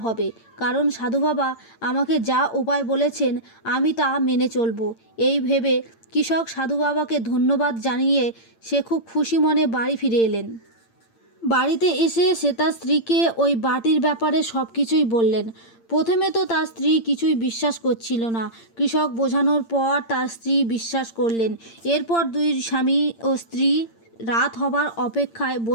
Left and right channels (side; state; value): right; late; 8.8 ms